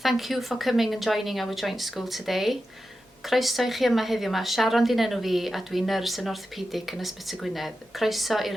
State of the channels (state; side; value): normal; both; correlation 0.91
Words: you for coming and joining our joint school today. Croeso I chi yma heddiw yma, Sharon di'n enw fi a dwi'n nyrs yn orthopedic yn Ysbyty Gwynedd. Croeso